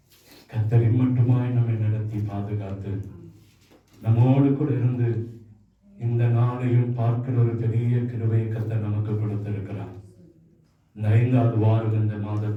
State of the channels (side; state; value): both; identical; correlation 1.00